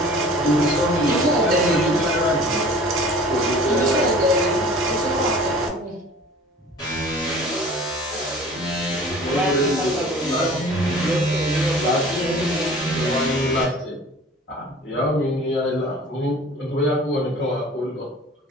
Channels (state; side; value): normal; both; correlation 0.45